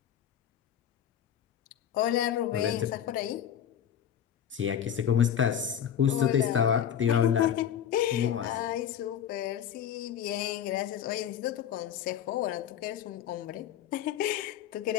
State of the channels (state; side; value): quieter; right; 9.5 dB